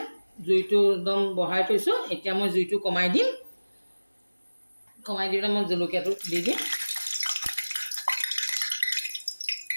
জুইটো একদম বঢ়াই থৈছোঁ। এতিয়া মই জুইটো কমাই দিম, কমাই দি পেলাই মই জলকীয়াটো দি দিম,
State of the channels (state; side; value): inverted; both; correlation -1.00